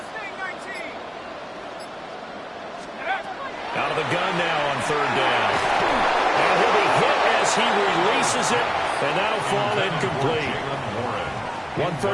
Out of the gun now on third down. And he'll be hit as he releases it, and that'll fall incomplete. One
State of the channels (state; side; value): identical; both; correlation 1.00